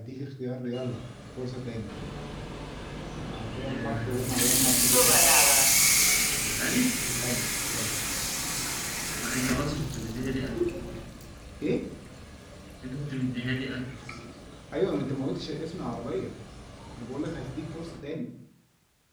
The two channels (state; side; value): identical; both; correlation 1.00